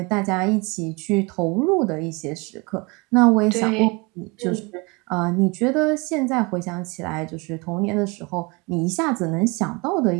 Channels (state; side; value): quieter; left; 27.5 dB